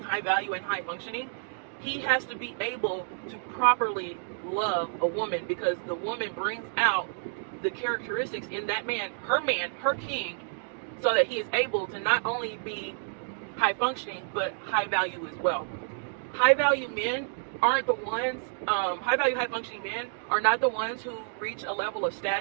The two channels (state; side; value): silent; left; digital silence